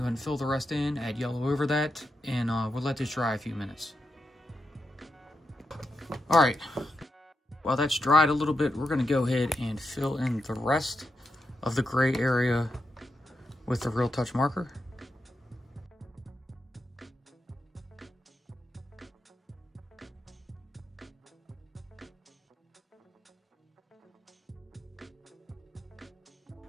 ahead and fill the rest in, add yellow over that, and we'll let this dry a few minutes. All right, while that's dried a little bit, we're gonna go ahead and fill in the rest of the gray area with the Real Touch marker.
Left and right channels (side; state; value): both; normal; correlation 0.86